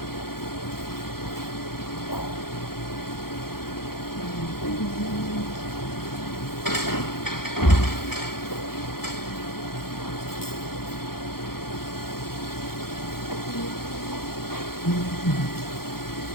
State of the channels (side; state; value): right; late; 0.94 ms